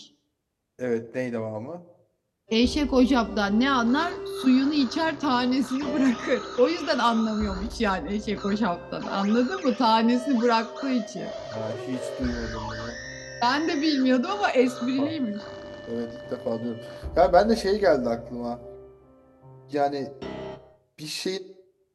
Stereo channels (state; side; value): identical; both; correlation 1.00